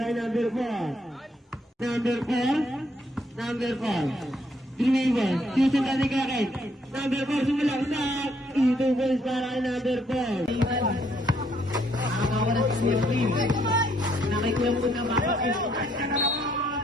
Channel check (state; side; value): normal; both; correlation 0.70